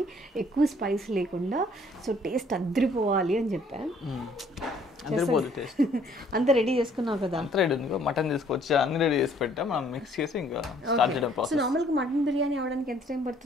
ఎక్కువ స్పైస్ లేకుండా, సో టేస్ట్ అద్దరిపోవాలి అని చెప్పాను. అంత రెడీ చేసుకున్నావు కదా? అంత రెడీ ఉంది, మటన్ తీసుకొచ్చి అన్ని రెడీ చేసి పెట్టా, మనం మిక్స్ చేసి ఇంకా స్టార్ట్ చేయడం ప్రాసెస్. సో నార్మల్గా మటన్ బిర్యానీ అవడానికి ఎంత టైం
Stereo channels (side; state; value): both; normal; correlation 0.61